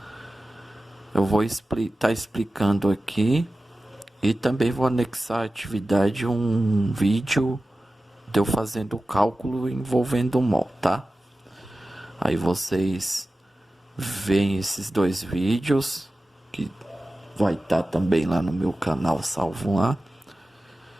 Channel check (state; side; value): normal; both; correlation 0.95